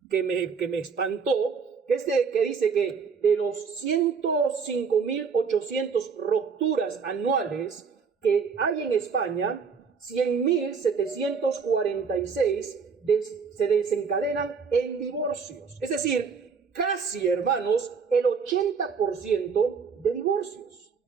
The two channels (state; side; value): quieter; left; 5.6 dB